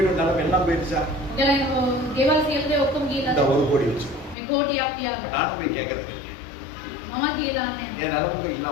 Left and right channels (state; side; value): drops out; right; at 4.4 s